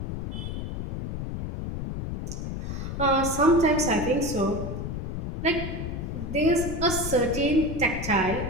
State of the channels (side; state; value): left; noise; rumble, 5 dB below the sound